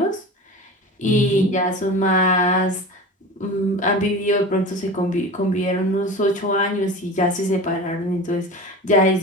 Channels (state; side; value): normal; both; correlation 0.33